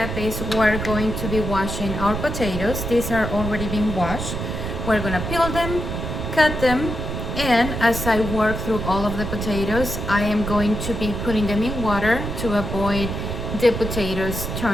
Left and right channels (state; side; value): noise; right; rumble, 4 dB below the sound